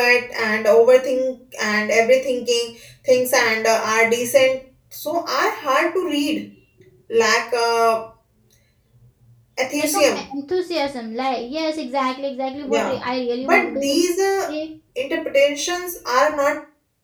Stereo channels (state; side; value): identical; both; correlation 1.00